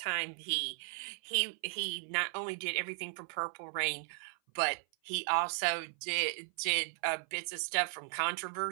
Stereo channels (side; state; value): left; silent; 54 dB below the other